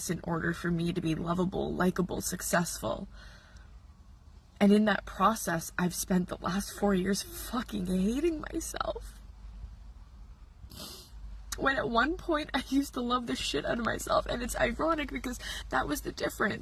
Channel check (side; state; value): both; identical; correlation 1.00